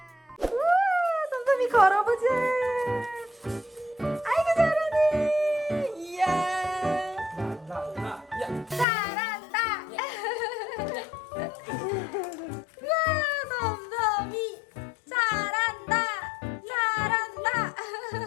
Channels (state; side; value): drops out; right; at 8.8 s